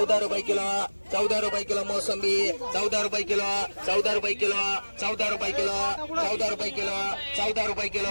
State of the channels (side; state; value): both; inverted; correlation -1.00